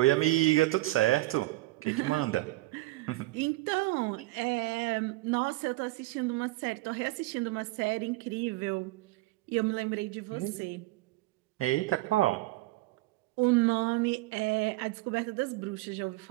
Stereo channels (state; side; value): quieter; left; 19.5 dB